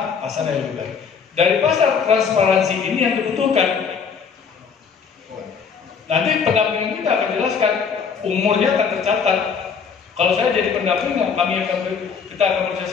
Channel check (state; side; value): quieter; right; 6.2 dB